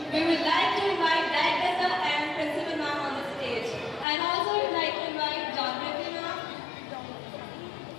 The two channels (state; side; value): drops out; right; at 4.0 s